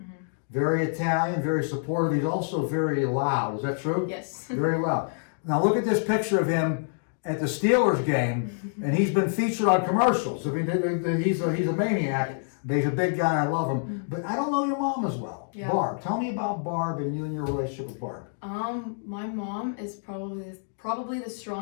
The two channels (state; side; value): silent; right; digital silence